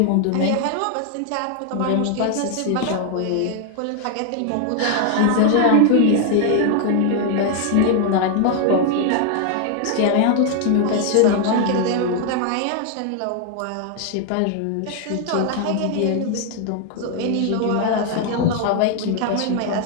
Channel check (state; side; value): different; both; correlation 0.00